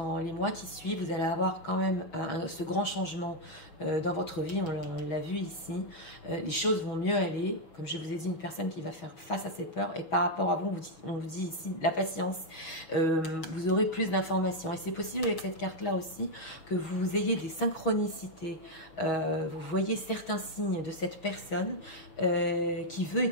les mois qui suivent, vous allez avoir quand même ce grand changement dans votre vie. On l'a vu ici. Les choses vont mieux aller. Comme je vous ai dit, une personne qui va faire face à ses peurs. Et par rapport à vous, on vous dit ici la patience. Vous aurez plus d'informations. Et c'est possible avec cette carte-là aussi que vous ayez des synchronicités. Vous voyez certains signes de cette personne qui veut et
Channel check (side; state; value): right; late; 6.3 ms